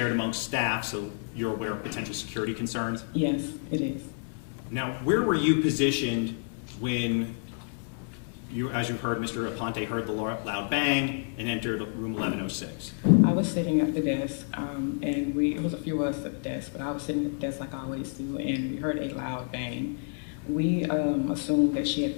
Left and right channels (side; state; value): right; silent; 56 dB below the other